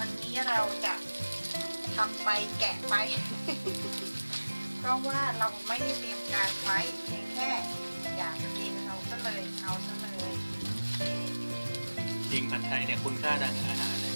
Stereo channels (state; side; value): inverted; both; correlation -1.00